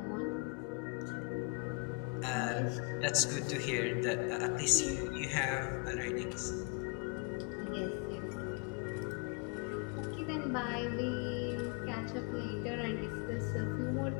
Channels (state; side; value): quieter; right; 31.6 dB